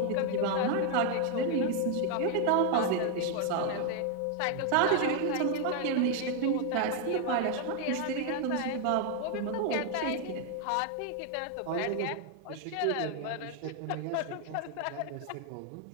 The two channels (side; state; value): both; different; correlation 0.01